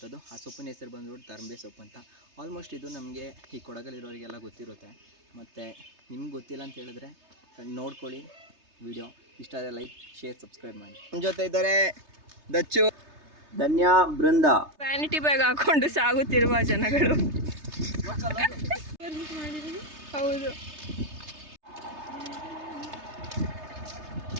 ಆ ಸೊಪ್ಪಿನ ಹೆಸರು ಬಂದ್ಬಿಟ್ಟು ತರಂಬೆ ಸೊಪ್ಪು ಅಂತ. ಆಲ್ಮೋಸ್ಟ್ ಇದು ನಮಗೆ ಈ ಕೊಡಗಲ್ಲಿರೋರಿಗೆಲ್ಲ ಗೊತ್ತಿರುತ್ತೆ. ಮತ್ತು ನಿಮ್ಗೆ ಗೊತ್ತಿಲ್ಲ ಅಂತ ಹೇಳಿದ್ರೆ ನೋಡ್ಕೊಳ್ಳಿ ವಿಡಿಯೋ. ಇಷ್ಟ ಆದರೆ ಲೈಕ್, ಶೇರ್, ಸಬ್ಸ್ಕ್ರೈಬ್ ಮಾಡಿ. ನಮ್ಮ ಜೊತೆ ಇದ್ದಾರೆ ದಚ್ಚು, ಧನ್ಯ, ಬೃಂದ. ವ್ಯಾನಿಟಿ ಬ್ಯಾಗ್ ಹಾಕೊಂಡು ಸಾಗುತ್ತಿರುವ ಜನಗಳು. ಹೌದು,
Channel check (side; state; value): left; late; 3.3 ms